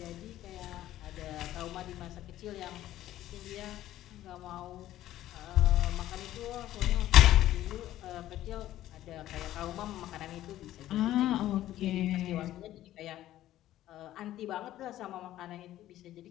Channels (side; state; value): right; quieter; 13.7 dB